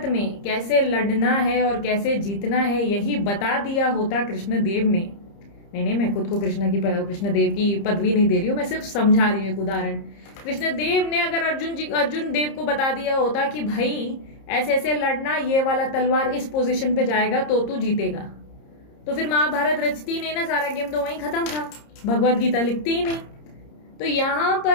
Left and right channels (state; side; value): late; right; 30 ms